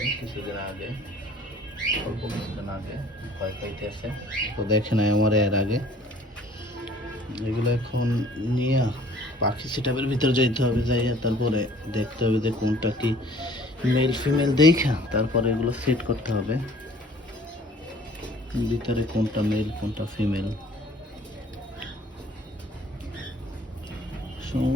কিছুদিন আগে, অল্প কিছুদিন আগে, ভয় পাইতেছে তো দেখে নাই আমার এর আগে। এগুলো এখন নিয়ে পাখি সেটআপের ভিতরে যাইতে হবে, যাইয়া তারপরে দেখতে হবে যে কোনটা কি মেল ফিমেল দেখা তারপরে এগুলো সেট করতে হবে ভিতরে কোনটা মেল কোনটা ফিমেল।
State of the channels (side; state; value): both; normal; correlation 0.53